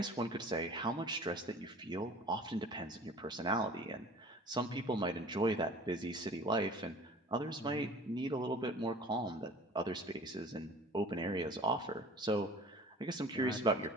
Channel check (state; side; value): normal; both; correlation 0.45